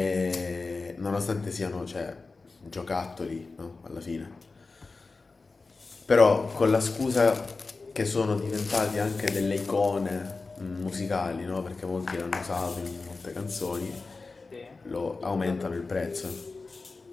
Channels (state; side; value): quieter; right; 3.9 dB